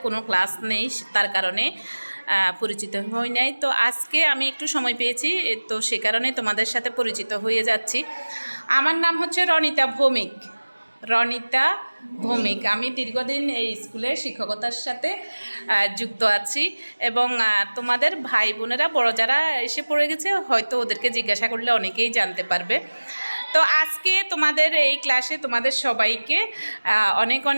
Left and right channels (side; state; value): both; inverted; correlation -1.00